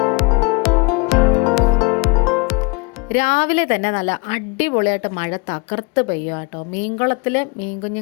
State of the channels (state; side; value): quieter; right; 28.1 dB